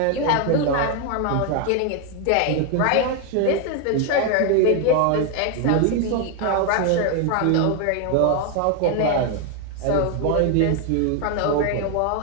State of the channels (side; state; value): both; different; correlation 0.01